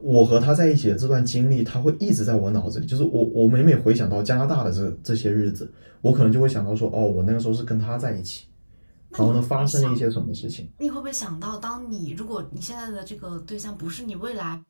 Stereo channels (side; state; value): both; inverted; correlation -1.00